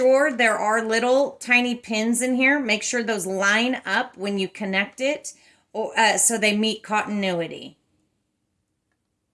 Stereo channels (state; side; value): identical; both; correlation 1.00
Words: there are little tiny pins in here. Make sure those line up when you connect it, so they meet continuity.